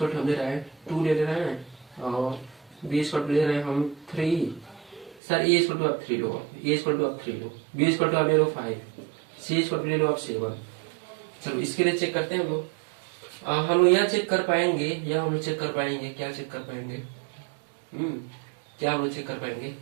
टू हम ले रहे हैं 2 ले रहे हैं, और बी इक्वल टू ले रहे हैं हम 3। सर ए इक्वल टू आप 3 लो, ए इक्वल टू आप 3 लो, बी इक्वल टू आप ले लो 5, सी इक्वल टू ले लो आप 7। चलो इसके लिए चेक करते हैं हम लोग। हम लोग यहाँ चेक कर पाएंगे, या हम लोग चेक कर पाएंगे, क्या चेक कर पाएंगे? क्या हम लोग चेक कर पाएंगे?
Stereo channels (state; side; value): drops out; left; at 5.2 s